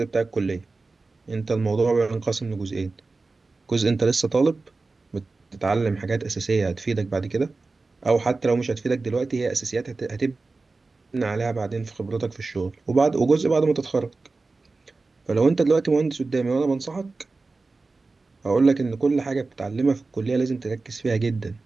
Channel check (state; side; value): quieter; left; 3.7 dB